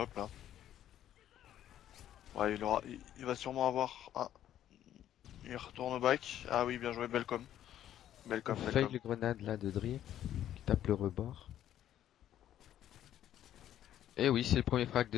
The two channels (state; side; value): quieter; right; 11.5 dB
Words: là. Ouais, il va sûrement avoir. Ah, il retourne au back. Ah oui, bien joué, Belcom. On Belcom, fail Belcom. le grenade là de Dream, qui tape le rebord. Et oui, c'est le premier frag